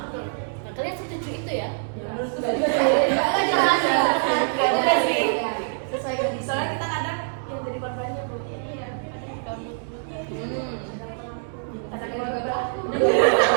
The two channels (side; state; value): left; silent; 62 dB below the other